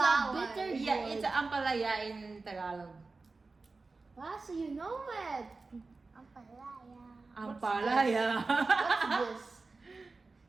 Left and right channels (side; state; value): left; quieter; 3.8 dB